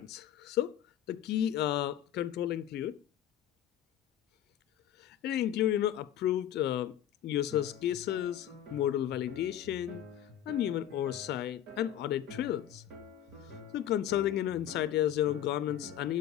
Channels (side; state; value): right; quieter; 11.1 dB